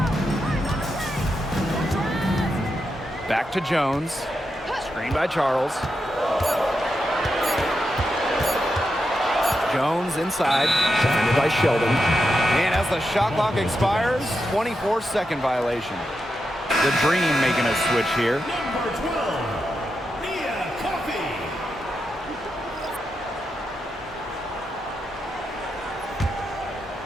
Back to Jones. Screen by Charles. Jones inside. Defended by Sheldon. And as the shot clock expires, 24-second violation. The Dream making a switch here. Number 12, Mia Coffey.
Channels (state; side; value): normal; both; correlation 0.86